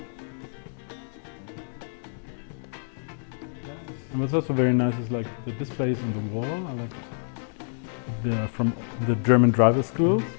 And what's also very nice is like the displays on the wall are like from the German driver schools.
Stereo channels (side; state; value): right; silent; digital silence